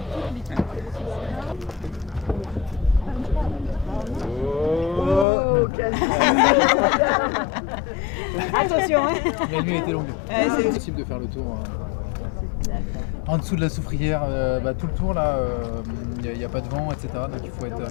Attention, hein. La nuit a été longue. C'est possible de faire le tour. En dessous de la soufrière, tout le tour là, il n'y a pas de vent, etc. Donc il faut être un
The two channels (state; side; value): drops out; right; at 5.2 s